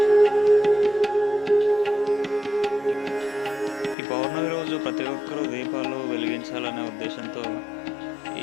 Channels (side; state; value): right; drops out; at 4.0 s